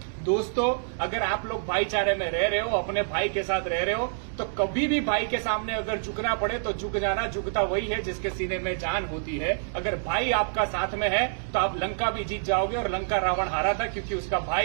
दोस्तों, अगर आप लोग भाईचारे में रह रहे हो, अपने भाई के साथ रह रहे हो, तो कभी भी भाई के सामने अगर झुकना पड़े तो झुक जाना। झुकता वही है जिसके सीने में जान होती है। अगर भाई आपका साथ में है तो आप लंका भी जीत जाओगे। और लंका रावण हारा था क्योंकि उसका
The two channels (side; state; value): left; silent; digital silence